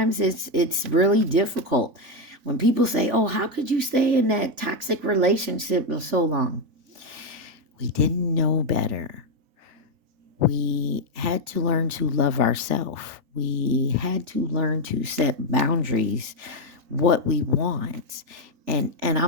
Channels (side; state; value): left; late; 3.5 ms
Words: it's really difficult. When people say, oh, how could you stay in that toxic relationship for so long? We didn't know better. We had to learn to love ourselves. We had to learn to set boundaries, what we want. And